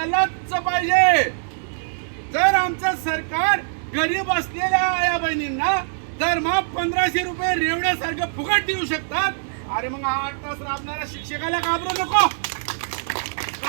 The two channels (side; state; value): left; silent; digital silence